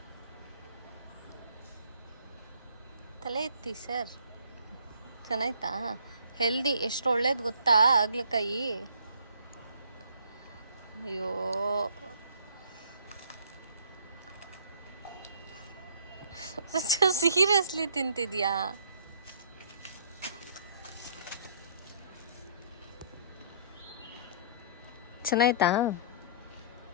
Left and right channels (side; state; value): both; inverted; correlation -0.58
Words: ತಲೆ ಎತ್ತಿ ಸರ್. ಚೆನ್ನಾಯ್ತಾ? ಹೆಲ್ದಿ, ಎಷ್ಟು ಒಳ್ಳೇದು ಗೊತ್ತಾ ಆಗ್ಲಕಾಯಿ. ಅಯ್ಯೋ ಸೀರಿಯಸ್ಲಿ ತಿಂತಿದ್ಯಾ? ಚೆನ್ನಾಯ್ತಾ?